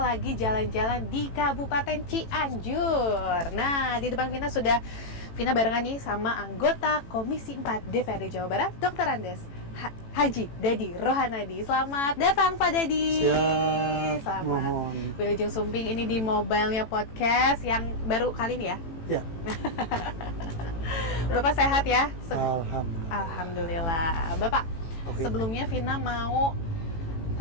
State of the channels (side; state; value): right; late; 18 ms